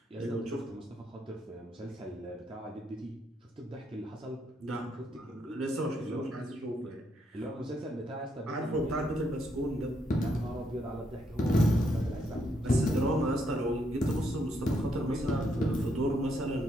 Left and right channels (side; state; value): both; normal; correlation 0.76